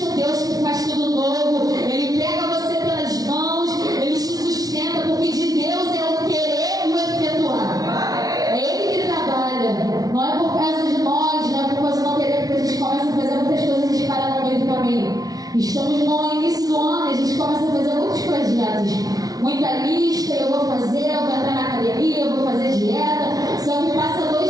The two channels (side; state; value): left; late; 0.18 ms